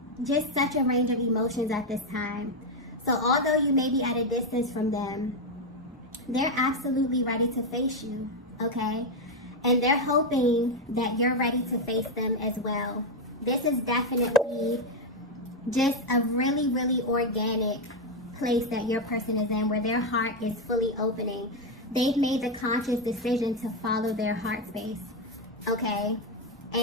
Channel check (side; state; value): both; normal; correlation 0.05